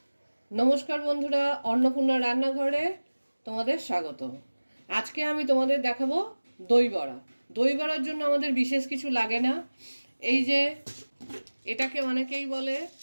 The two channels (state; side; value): inverted; both; correlation -1.00